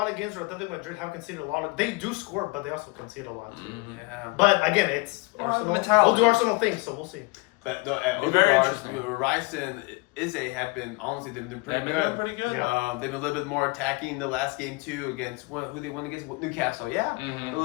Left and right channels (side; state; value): right; quieter; 25.9 dB